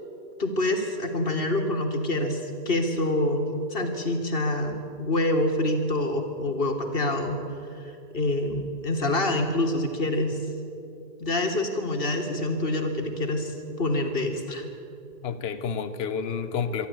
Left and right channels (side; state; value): right; late; 2.7 ms